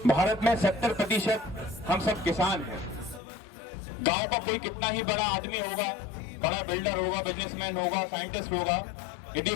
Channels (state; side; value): drops out; right; at 3.2 s